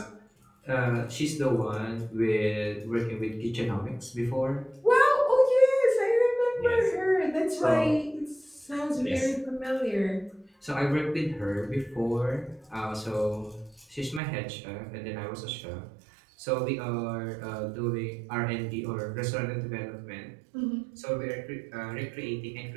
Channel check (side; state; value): left; drops out; at 14.2 s